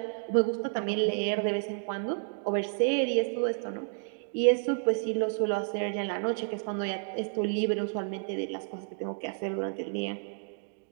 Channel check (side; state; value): left; silent; digital silence